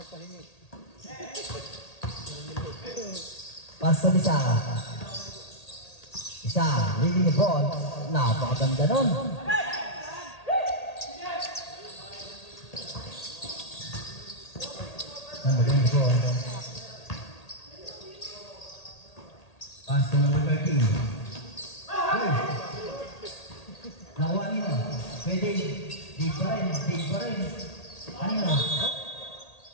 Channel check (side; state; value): right; late; 1.8 ms